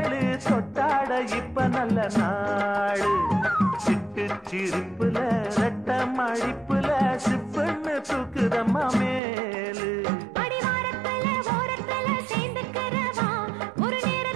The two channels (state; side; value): drops out; left; at 9.2 s